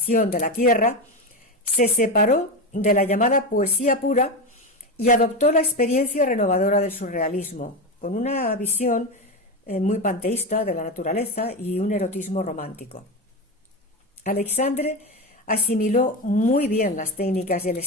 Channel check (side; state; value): both; normal; correlation 0.17